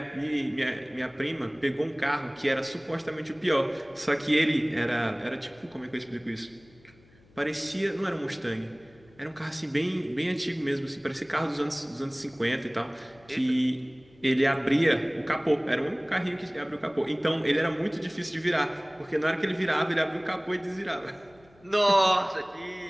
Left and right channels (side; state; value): left; noise; hum, 28 dB below the sound